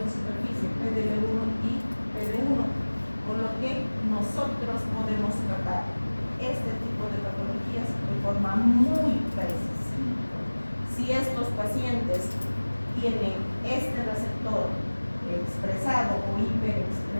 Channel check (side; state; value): both; inverted; correlation -1.00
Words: de superficie, PDL1 y PD1, con lo que nosotros podemos tratar este tipo de patologías de forma muy precisa. Si estos pacientes tienen este receptor expresado o